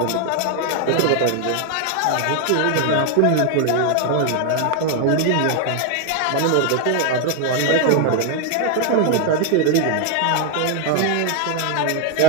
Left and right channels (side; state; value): both; different; correlation 0.01